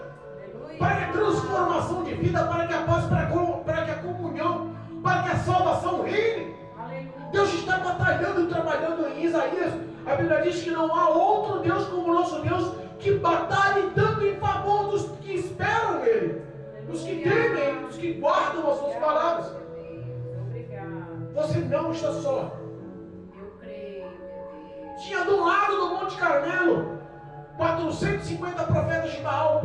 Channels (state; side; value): identical; both; correlation 1.00